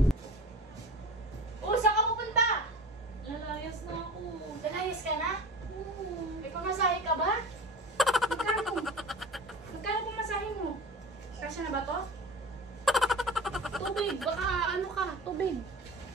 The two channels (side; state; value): both; normal; correlation 0.36